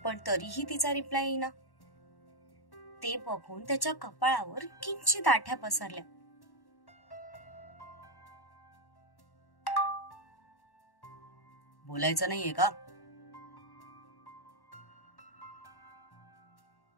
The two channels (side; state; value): right; late; 1.1 ms